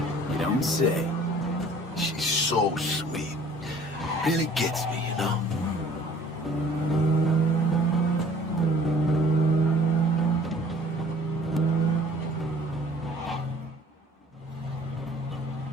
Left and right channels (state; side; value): normal; both; correlation 0.52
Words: You don't say. She's so sweet. Really gets me, you know?